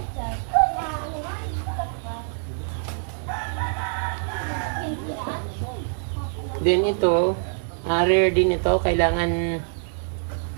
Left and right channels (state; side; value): silent; left; 62 dB below the other